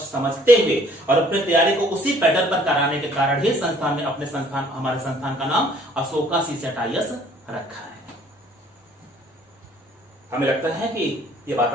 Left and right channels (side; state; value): both; normal; correlation 0.58